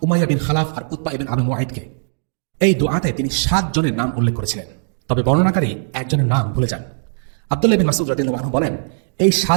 উমাইয়া বিন খালাফ আর উতবা ইবনে আবি মুআইতকে। এই দোয়াতে তিনি 7 জনের নাম উল্লেখ করেছিলেন, তবে বর্ণনাকারী একজনের নাম ভুলে যান। আব্দুল্লাহ বিন মাসউদ রাদিয়াল্লাহু আনহু বলেন, এই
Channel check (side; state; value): left; silent; digital silence